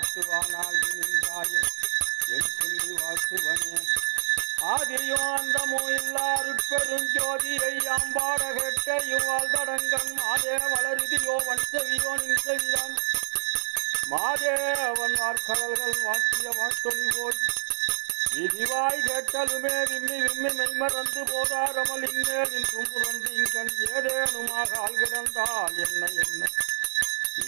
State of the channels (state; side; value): silent; left; digital silence